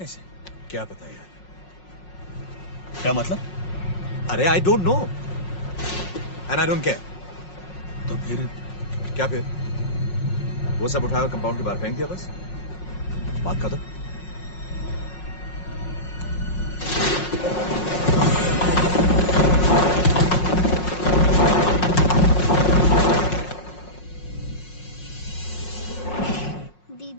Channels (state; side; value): late; right; 5.5 ms